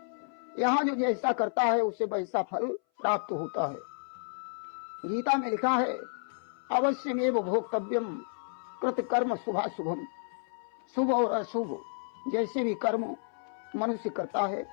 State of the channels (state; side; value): silent; right; 57 dB below the other